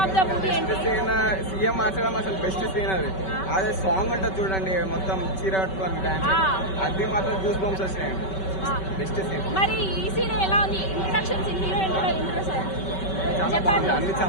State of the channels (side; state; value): right; late; 5.2 ms